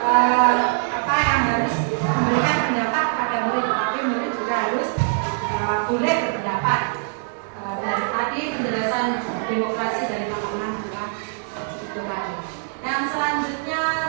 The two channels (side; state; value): left; silent; digital silence